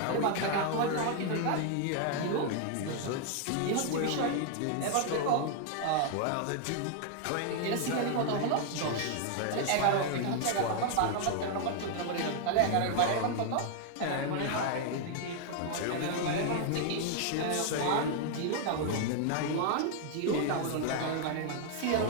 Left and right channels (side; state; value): both; different; correlation 0.00